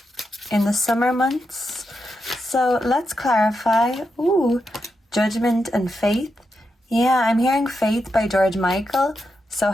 in the summer months. So let's clarify. Ooh, Judgment and Faith. Yeah, I'm hearing faith by George Michael. So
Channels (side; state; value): both; normal; correlation 0.86